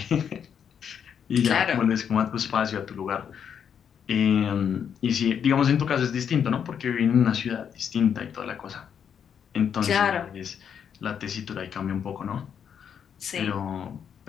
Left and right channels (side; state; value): right; quieter; 7.9 dB